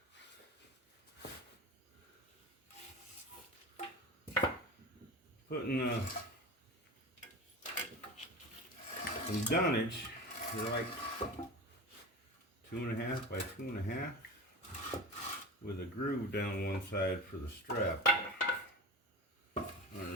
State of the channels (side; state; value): both; normal; correlation 0.31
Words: Putting some dunnage, they're like 2.5 by 2.5, with a groove down one side for the strap